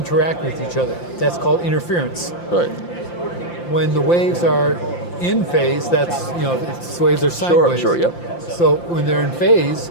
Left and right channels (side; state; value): right; late; 5.8 ms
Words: with each other. That's called interference. Right. When the waves are in phase, that's, waves are sine waves. Sure, yep. So when they're in